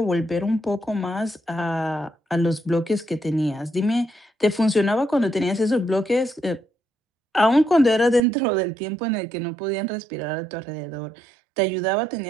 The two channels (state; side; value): drops out; left; at 8.2 s